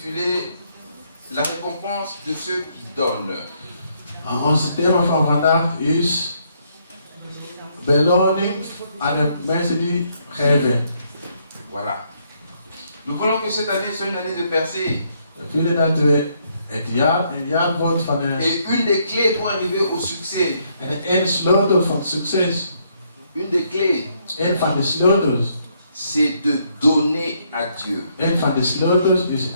La récompense de ceux qui donnent. Ons thema van vandaag is beloning aan de mensen die geven. Voilà. Nous voulons que cette année soit une année de percée. We willen dat we het jaar een jaar wordt van Et une des clés pour arriver au succès. En een sleutel van succes. Une des clés. Een van de sleutels. C'est de donner à Dieu. Een van de sleutels is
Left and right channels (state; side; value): inverted; both; correlation -0.72